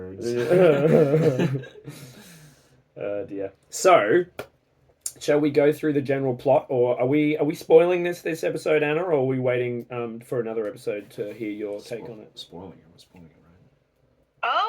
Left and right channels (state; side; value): identical; both; correlation 1.00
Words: Dear. So, shall we go through the general plot, or are we spoiling this episode, Anna, or are we waiting for another episode to hear your take on it? Spoiling it, right?